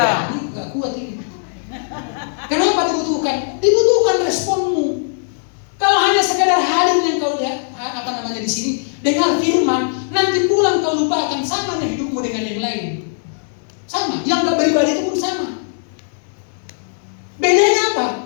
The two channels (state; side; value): silent; right; digital silence